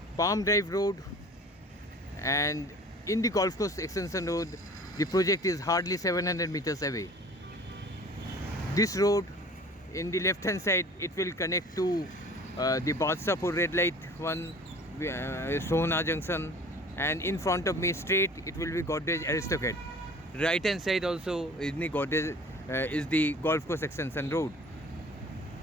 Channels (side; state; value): both; normal; correlation 0.46